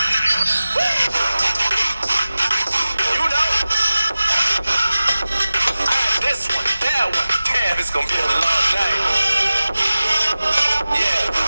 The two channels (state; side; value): inverted; both; correlation -0.96